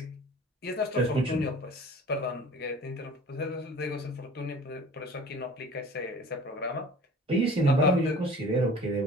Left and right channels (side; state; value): both; normal; correlation 0.45